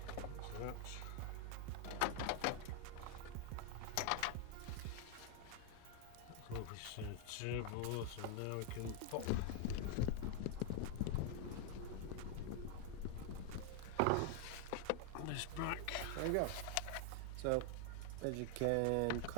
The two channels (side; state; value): both; different; correlation 0.00